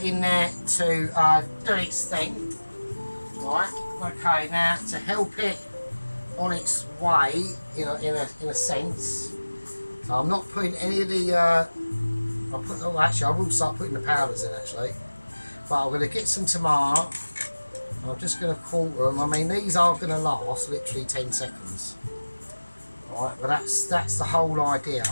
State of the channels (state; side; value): inverted; both; correlation -1.00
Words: in there to do its thing. Right. Okay. Now to help it on its way, in a sense. So I'm not putting any of the. Actually, I will start putting the powders in actually. But I'm going to get some tomato. I'm just going to quarter them. I mean, these are going to last literally 10 seconds. Right, but that's the whole idea,